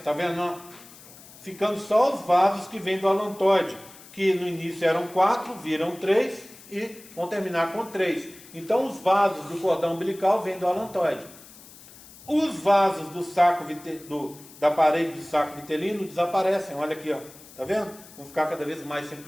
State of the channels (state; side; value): noise; left; hiss, 20 dB below the sound